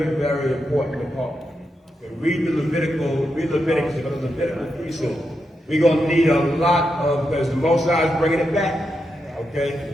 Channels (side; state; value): both; normal; correlation 0.85